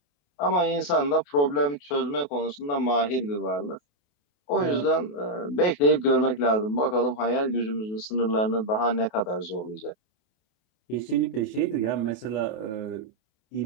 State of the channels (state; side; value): late; right; 28 ms